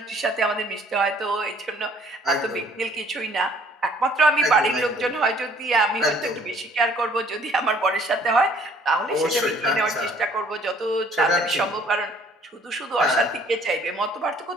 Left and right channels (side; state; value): both; normal; correlation 0.58